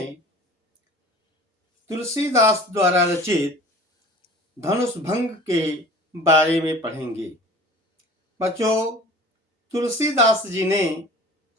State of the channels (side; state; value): both; normal; correlation 0.43